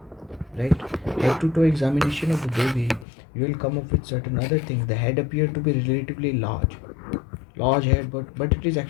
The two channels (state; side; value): drops out; right; at 3.1 s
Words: right? Head to toe examination of the baby, you will come up with certain other things. The head appears to be relatively large head, but it is